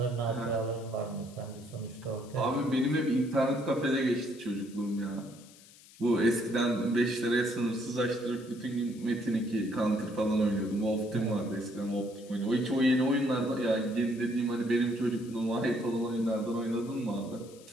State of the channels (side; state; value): left; noise; hiss, 23 dB below the sound